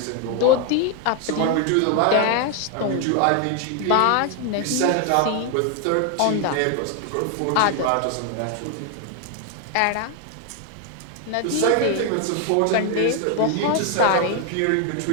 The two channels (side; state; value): both; different; correlation 0.01